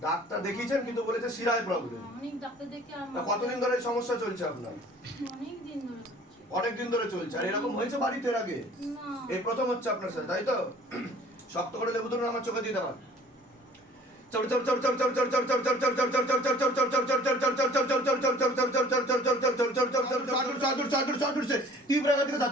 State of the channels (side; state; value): both; normal; correlation 0.51